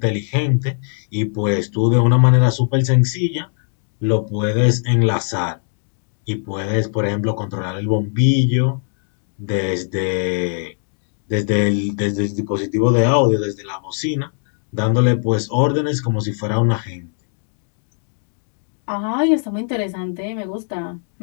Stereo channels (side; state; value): right; silent; 61 dB below the other